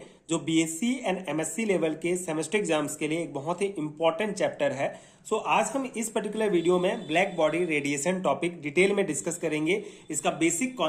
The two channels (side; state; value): both; identical; correlation 1.00